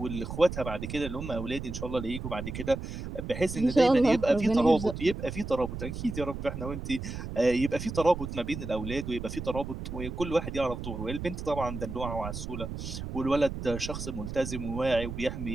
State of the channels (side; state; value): right; noise; rumble, 7 dB below the sound